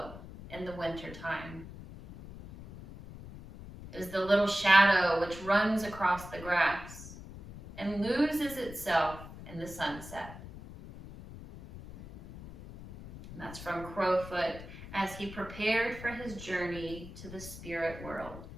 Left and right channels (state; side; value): noise; left; rumble, 14 dB below the sound